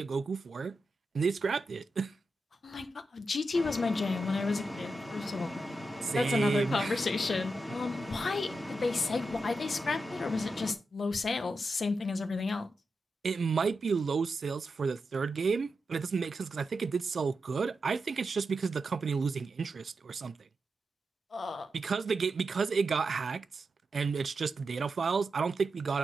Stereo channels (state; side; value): normal; both; correlation 0.88